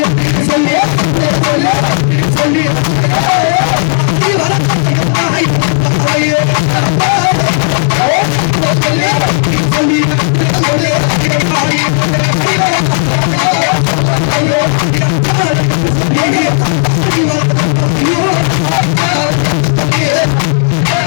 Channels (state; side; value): silent; right; digital silence